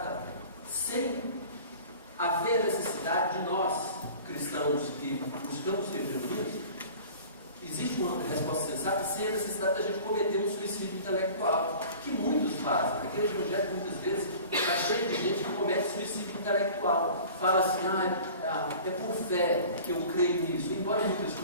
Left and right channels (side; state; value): both; inverted; correlation -0.43